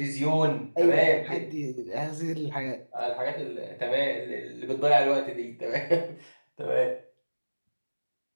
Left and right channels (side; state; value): both; inverted; correlation -1.00